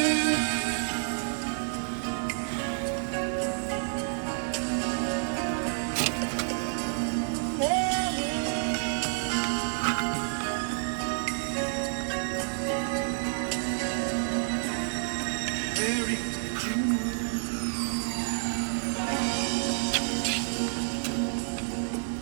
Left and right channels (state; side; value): silent; left; digital silence